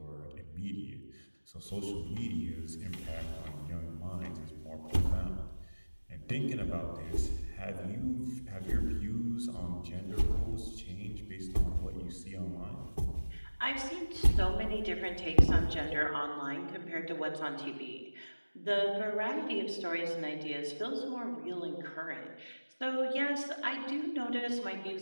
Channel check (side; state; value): both; inverted; correlation -1.00